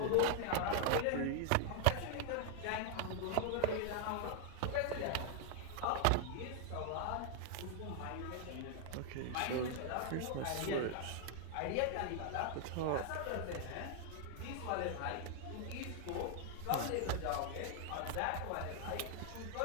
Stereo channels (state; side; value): different; both; correlation 0.00